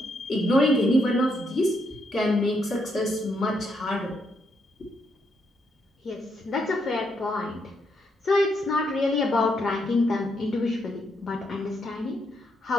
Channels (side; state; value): both; normal; correlation 0.77